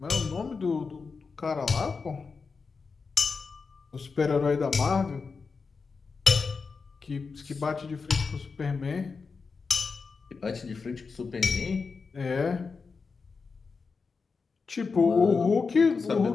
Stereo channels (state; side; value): quieter; right; 4.8 dB